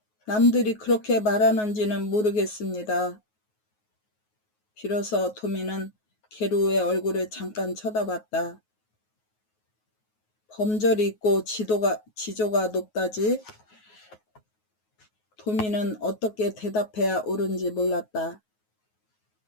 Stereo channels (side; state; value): right; late; 9.4 ms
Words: 남들이 그렇게 말하는지는 모르겠습니다. 비로소 도미는 계루의 얼굴을 잠깐 쳐다봤다. 범절이 있고 지조가 높다지? 도미는 어떻게 대답해야 옳은지 몰랐다.